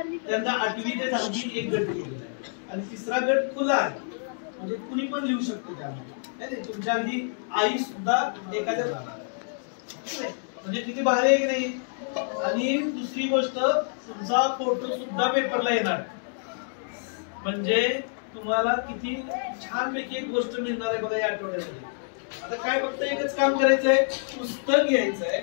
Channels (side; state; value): right; silent; digital silence